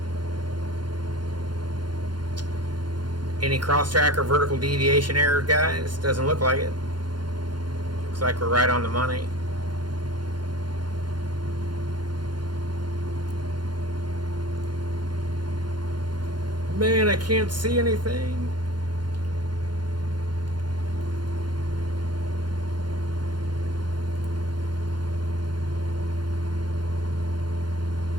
Any cross-track or vertical deviation error, guys? Doesn't look like it. Looks like we're right on the money. Man, I can't see anything.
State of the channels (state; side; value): late; left; 0.71 ms